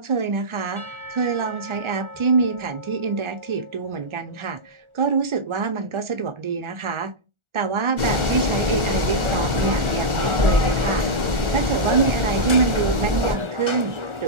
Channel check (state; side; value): late; left; 1.4 ms